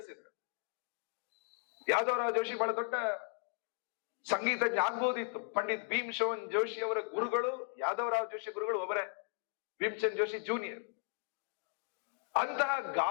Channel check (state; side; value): silent; right; 53 dB below the other